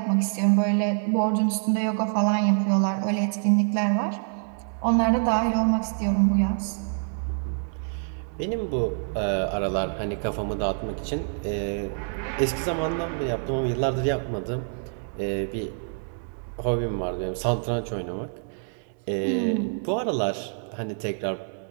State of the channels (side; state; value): left; silent; 61 dB below the other